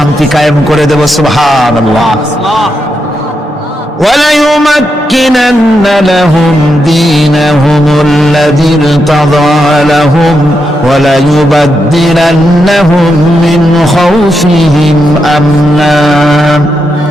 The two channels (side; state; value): both; normal; correlation 0.84